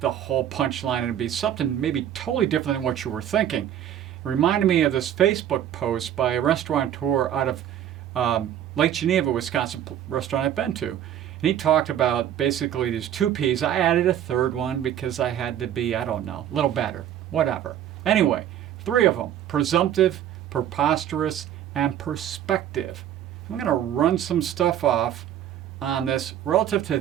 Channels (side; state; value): left; quieter; 10.7 dB